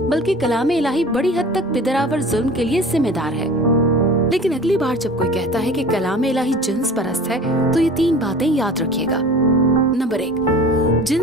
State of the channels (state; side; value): normal; both; correlation 0.41